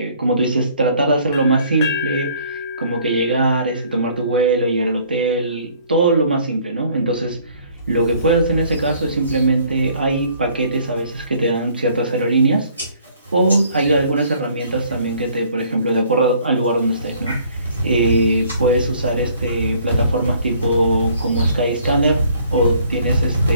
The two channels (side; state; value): both; inverted; correlation -0.58